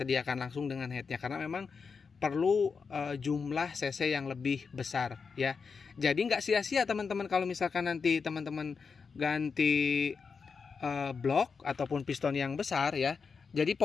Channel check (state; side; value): quieter; right; 5.4 dB